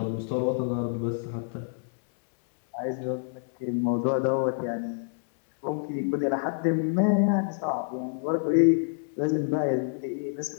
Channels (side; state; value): right; silent; digital silence